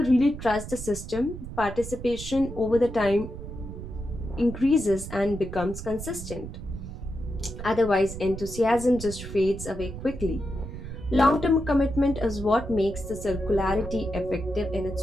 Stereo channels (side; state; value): right; noise; rumble, 10 dB below the sound